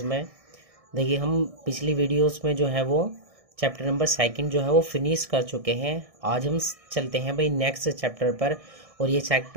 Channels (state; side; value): late; left; 1.6 ms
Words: में। देखिए हम पिछली वीडियोस में जो है वो चैप्टर नंबर सेकंड जो है वो फिनिश कर चुके हैं। आज हम चलते हैं भाई नेक्स्ट चैप्टर पर, और ये